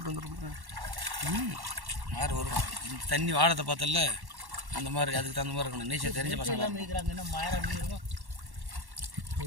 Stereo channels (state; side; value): late; left; 1.1 ms